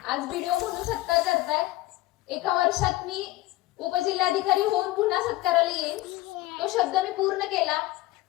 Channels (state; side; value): quieter; right; 17.5 dB